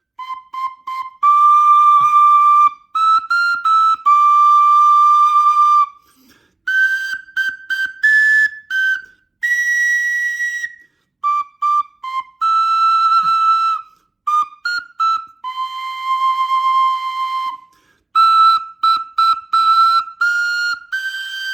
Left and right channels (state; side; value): quieter; left; 3.1 dB